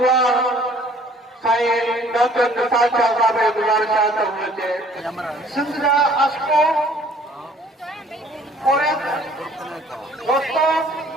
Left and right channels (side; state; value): both; normal; correlation 0.56